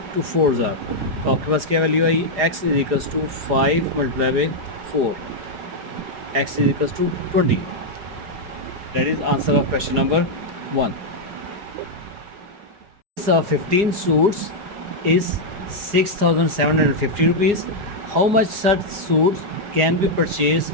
2 4s are. तो आपके पास क्या वैल्यू आई? x is equals to 5 multiply by 4, x is equals to 20. That is answer of question number 1. 15 suits is 6,750 rupees. How much such suits can be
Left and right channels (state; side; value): late; left; 4.9 ms